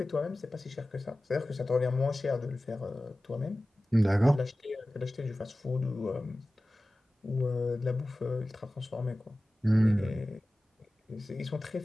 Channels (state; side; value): normal; both; correlation 0.96